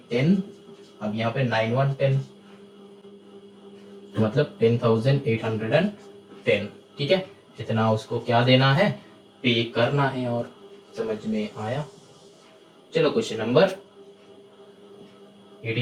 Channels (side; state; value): both; identical; correlation 1.00